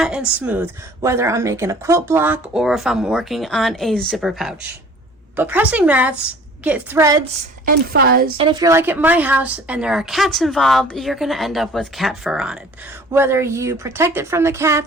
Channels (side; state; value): both; normal; correlation 0.49